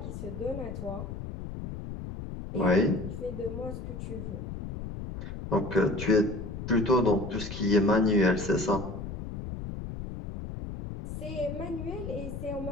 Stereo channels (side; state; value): left; noise; rumble, 8 dB below the sound